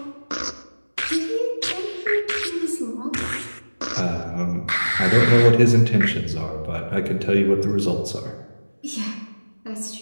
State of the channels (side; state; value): both; inverted; correlation -1.00